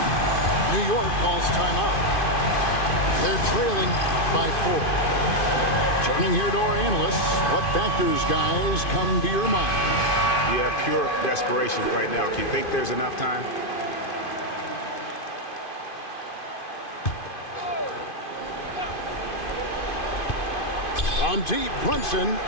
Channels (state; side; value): late; right; 2.5 ms